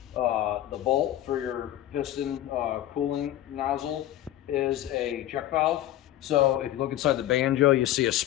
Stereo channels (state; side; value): quieter; right; 13.3 dB